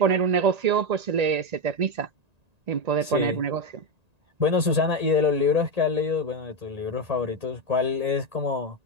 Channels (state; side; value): late; left; 1.8 ms